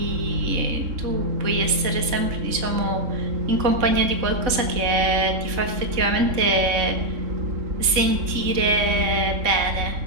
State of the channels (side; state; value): left; late; 3.6 ms